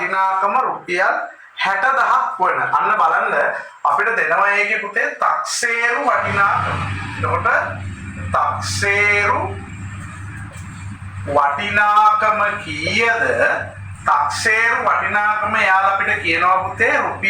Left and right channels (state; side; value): identical; both; correlation 1.00